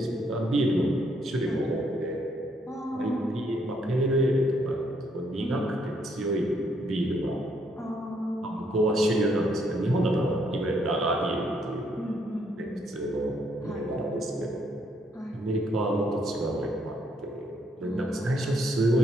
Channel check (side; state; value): both; normal; correlation 0.71